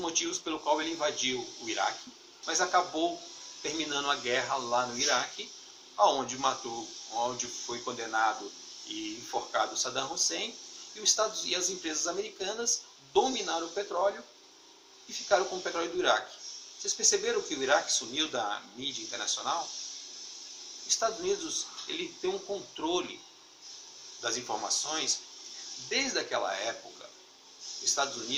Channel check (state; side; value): identical; both; correlation 1.00